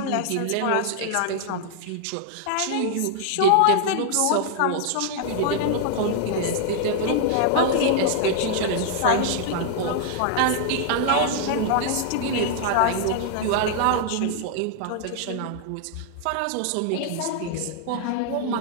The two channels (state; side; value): different; both; correlation 0.00